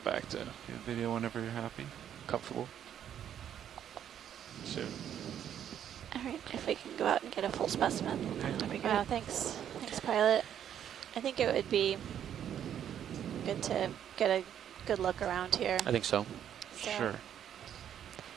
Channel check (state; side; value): quieter; left; 9.7 dB